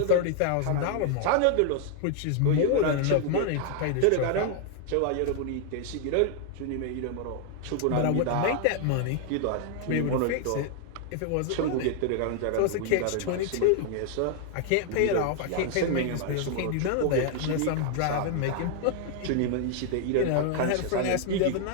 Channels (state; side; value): different; both; correlation 0.00